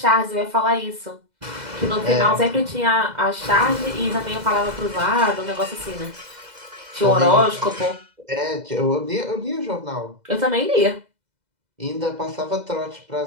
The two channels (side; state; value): left; late; 2.0 ms